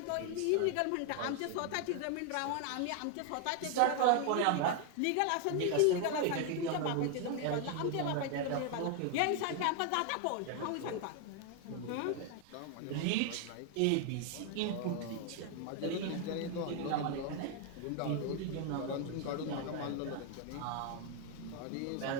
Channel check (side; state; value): both; different; correlation 0.00